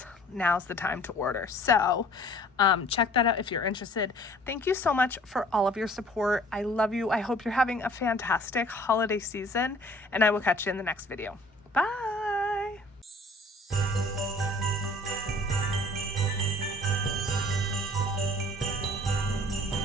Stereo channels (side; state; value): both; normal; correlation 0.52